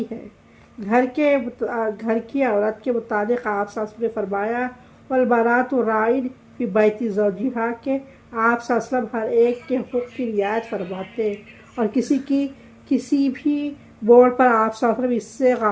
ہے۔ گھر کی عورت کے متعلق آپ صلی اللہ علیہ وسلم نے فرمایا والمرأۃ راعٍ فی بیت زوجہا کہ آپ صلی اللہ علیہ وسلم ہر ایک کے حقوق کی رعایت فرماتے اور کسی بھی موڑ پر آپ صلی اللہ علیہ وسلم اس سے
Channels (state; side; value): identical; both; correlation 1.00